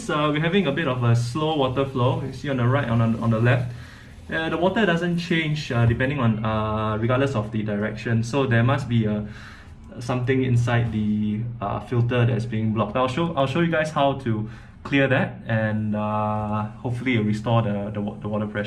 we're having a bit of a slow water flow. You see on the right and on the left. The water doesn't change depending on, regardless of the direction. So there must be something inside the filter that's being blocked. I'll show you guys how to clear that, and hopefully it'll restore the water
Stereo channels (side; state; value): both; identical; correlation 1.00